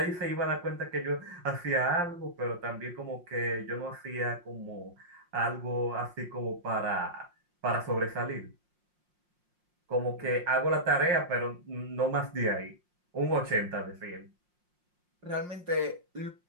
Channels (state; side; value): late; left; 5.6 ms